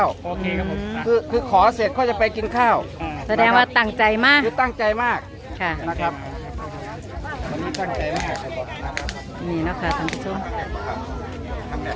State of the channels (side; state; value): both; identical; correlation 1.00